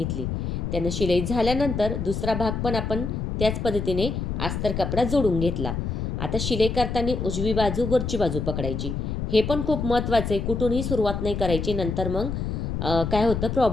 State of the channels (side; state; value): left; noise; rumble, 3 dB below the sound